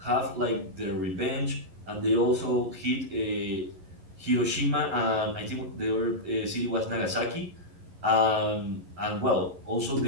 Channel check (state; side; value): late; left; 11 ms